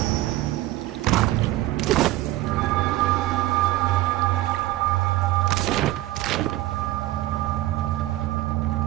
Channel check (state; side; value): quieter; left; 16.3 dB